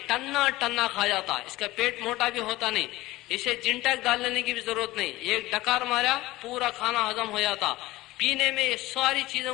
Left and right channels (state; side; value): quieter; right; 18.3 dB